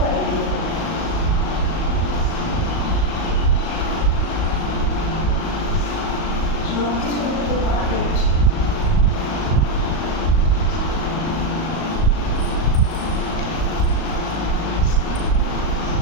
পারিনি। সব কিছু করতে পারলে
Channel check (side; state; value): right; late; 38 ms